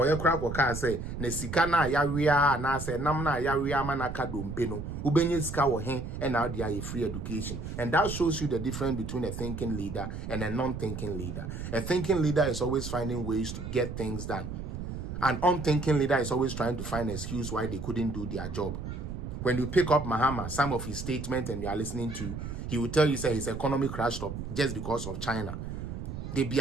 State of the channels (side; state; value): right; noise; rumble, 7 dB below the sound